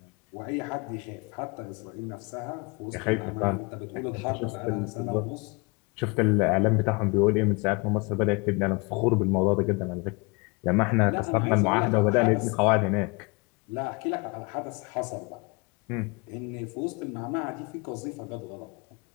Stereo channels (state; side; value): quieter; right; 29.1 dB